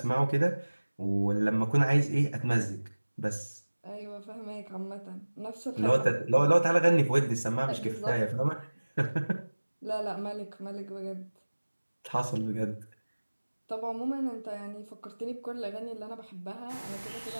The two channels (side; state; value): both; inverted; correlation -1.00